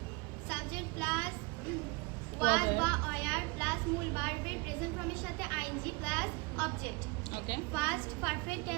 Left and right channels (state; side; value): quieter; left; 27.1 dB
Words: ওয়াজ বা ওয়ার প্লাস মূল ভার্বের প্রেজেন্ট ফর্মের সাথে আইএনজি প্লাস অবজেক্ট। ওকে। ফার্স্ট পারফেক্ট